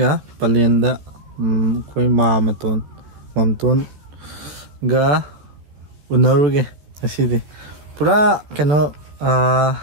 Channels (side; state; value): left; late; 14 ms